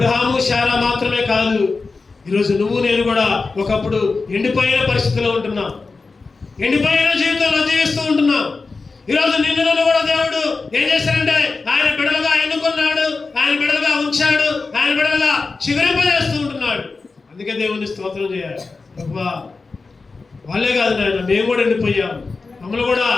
శారా మాత్రమే కాదు, ఈరోజు నువ్వు నేను కూడా ఒకప్పుడు ఎండిపోయిన పరిస్థితిలో ఉంటున్నాం, ఎండిపోయిన జీవితంలో జీవిస్తూ ఉంటున్నాం. ఈరోజు నిన్ను కూడా దేవుడు ఏం చేశాడంటే ఆయన బిడ్డలుగా ఎన్నుకున్నాడు, ఆయన బిడ్డలుగా ఉంచాడు, ఆయన బిడ్డలుగా చిగురింపజేస్తూ ఉంటున్నాడు. అందుకే దేవుని స్తోత్రం చేయాలి. ప్రభా వాళ్ళే కాదు నాయన, మేము కూడా ఎండిపోయాము, మమ్మల్ని కూడా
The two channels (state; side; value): quieter; right; 4.1 dB